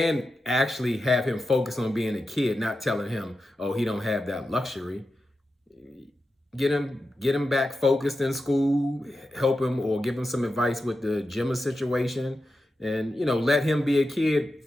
actually have him focus on being a kid, not telling him, oh, he don't have that luxury. Get him back focused in school, help him, or give him some advice with the Gemma situation, and let him be a kid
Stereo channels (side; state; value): both; normal; correlation 0.90